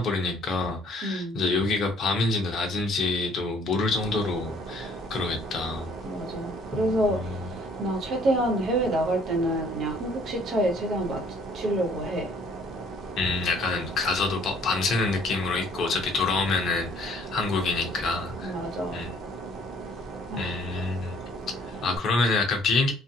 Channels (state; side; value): normal; both; correlation 0.60